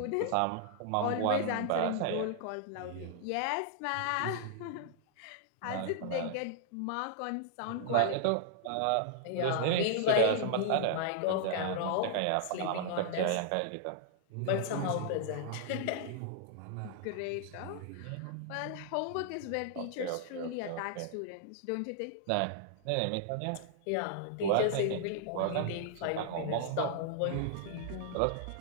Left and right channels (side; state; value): both; different; correlation -0.01